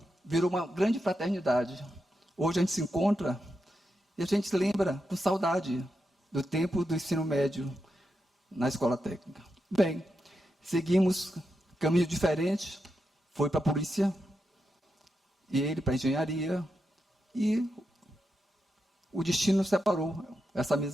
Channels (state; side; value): normal; both; correlation 0.87